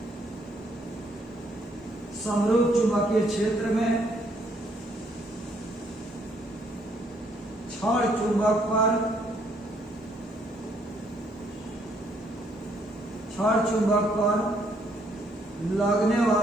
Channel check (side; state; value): both; normal; correlation 0.69